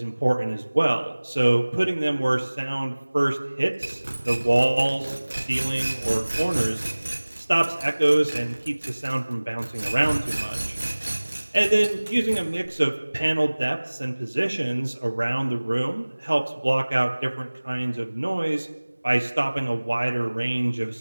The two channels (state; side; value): inverted; both; correlation -1.00